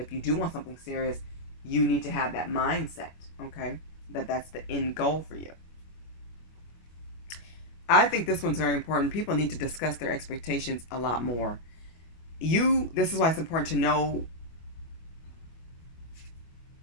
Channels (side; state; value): right; late; 25 ms